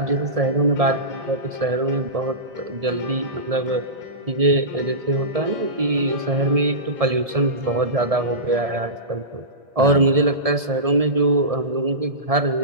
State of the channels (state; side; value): late; left; 1.7 ms